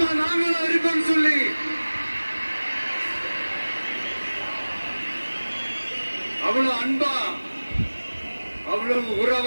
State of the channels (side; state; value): both; inverted; correlation -1.00